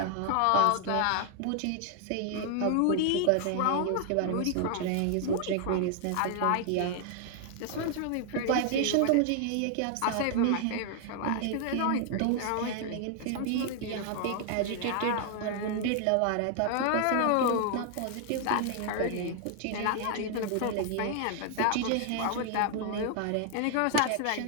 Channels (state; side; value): different; both; correlation 0.00